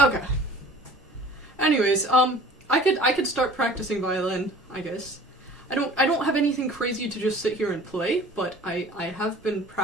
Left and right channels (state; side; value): normal; both; correlation 0.46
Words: Anyways, I could start practicing violin, I guess. I don't have anything crazy to just sit here and play, but I have been